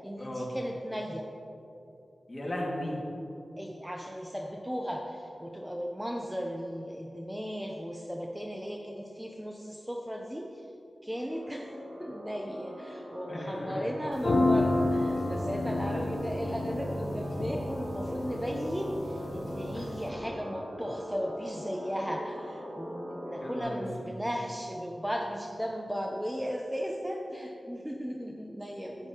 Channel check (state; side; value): normal; both; correlation 0.96